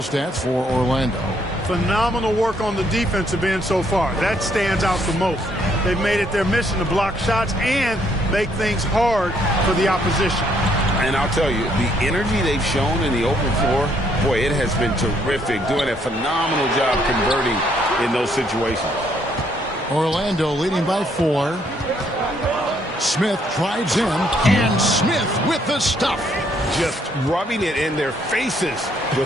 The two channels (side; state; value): both; normal; correlation 0.69